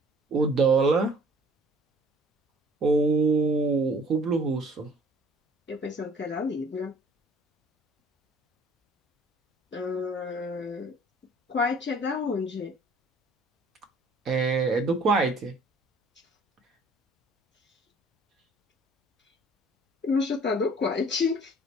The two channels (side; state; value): both; normal; correlation 0.53